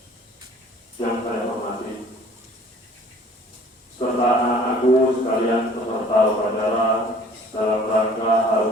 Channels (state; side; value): normal; both; correlation 0.52